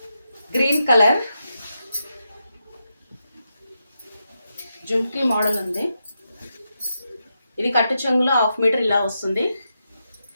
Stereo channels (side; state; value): both; inverted; correlation -0.86